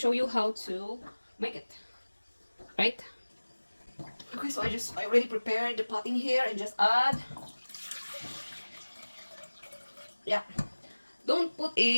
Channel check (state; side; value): inverted; both; correlation -1.00